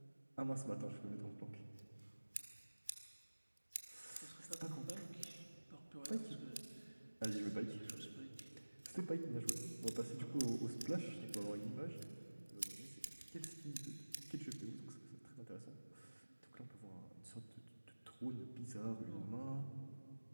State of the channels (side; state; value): both; inverted; correlation -1.00